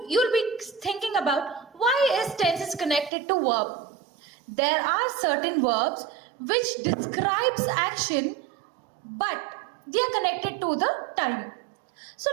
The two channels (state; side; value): drops out; left; at 3.1 s